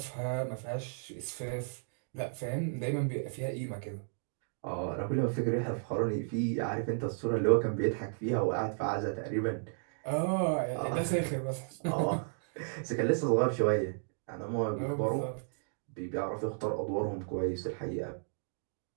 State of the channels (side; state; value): left; silent; digital silence